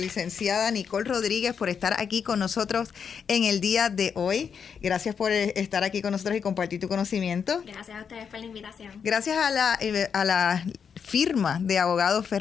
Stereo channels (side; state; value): right; quieter; 6.8 dB